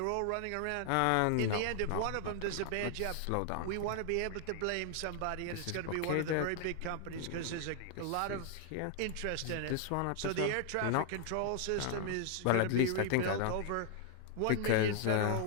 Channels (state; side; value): different; both; correlation 0.00